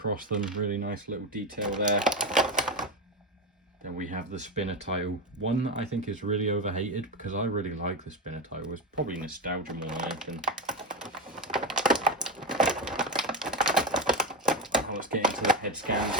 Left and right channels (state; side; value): normal; both; correlation 0.15